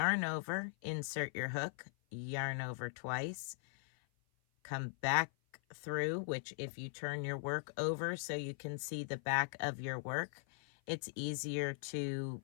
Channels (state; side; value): silent; right; 51 dB below the other